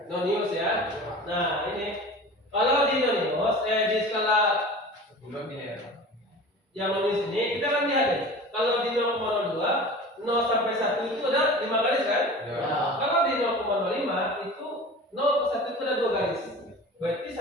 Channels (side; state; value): both; normal; correlation 0.37